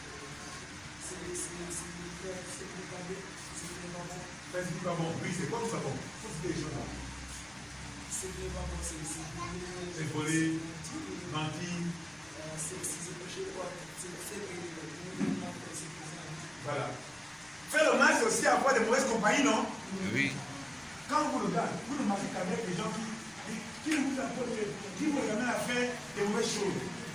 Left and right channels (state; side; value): noise; left; rumble, 28 dB below the sound